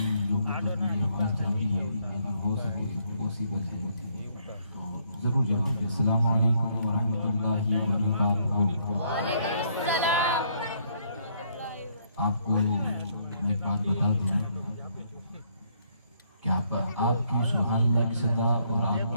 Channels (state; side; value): inverted; both; correlation -0.69